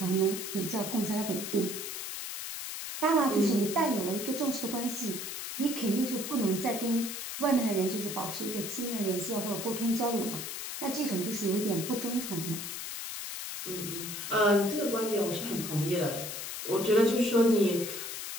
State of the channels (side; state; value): left; noise; hiss, 6 dB below the sound